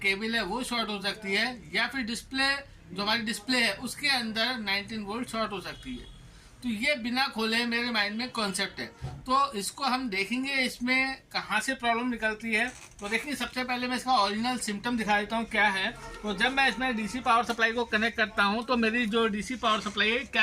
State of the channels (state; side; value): identical; both; correlation 1.00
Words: है वो शॉर्ट हो सकती है, या फिर डिस्प्ले जो हमारी डिस्प्ले है उसके अंदर 19 वोल्ट शॉर्ट हो सकती है। तो ये बिना खोले मेरे माइंड में कॉन्सेप्ट है। तो इसको हम देखेंगे इसमें कहाँ से प्रॉब्लम निकलती है। तो देखिए सबसे पहले मैं इसका ओरिजिनल सिम्टम दिखा देता हूँ क्या है। तो जब मैं इसमें डीसी पावर सप्लाई को कनेक्ट करता हूँ तो मेरी जो डीसी पावर सप्लाई है